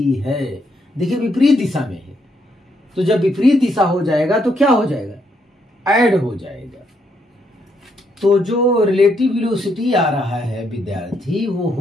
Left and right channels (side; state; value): both; normal; correlation 0.75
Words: है। देखिए विपरीत दिशा में है, तो जब विपरीत दिशा हो जाएगा तो क्या हो जाएगा, ऐड हो जाएगा। तो जो रिलेटिव वेलोसिटी आ रहा है विद्यार्थी वो